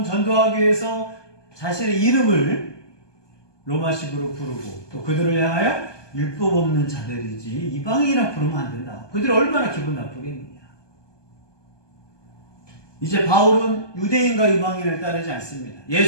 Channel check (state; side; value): late; right; 1.2 ms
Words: 전도하기 위해서 자신의 이름을 로마식으로 부르고 또 그들을 향하여 율법 없는 자들이지 이방인이라 부르면 안 된다. 그들이 얼마나 기분 나쁘겠느냐. 이제 바울은 유대인과 이방인을 따르지 않습니다.